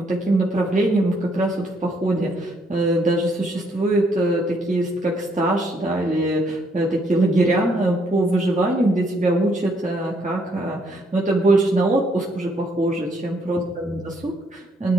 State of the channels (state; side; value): normal; both; correlation 0.70